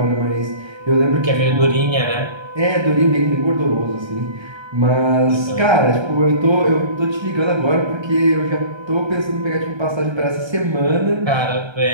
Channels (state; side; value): late; left; 1.3 ms